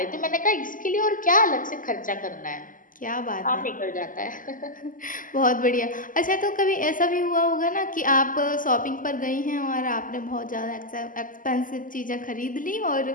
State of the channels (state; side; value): late; right; 0.39 ms